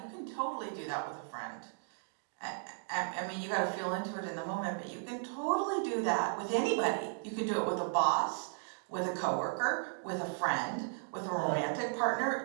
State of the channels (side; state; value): left; silent; digital silence